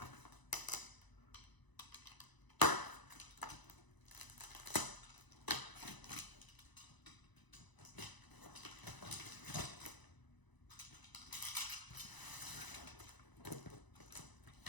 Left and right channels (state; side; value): late; right; 1.0 ms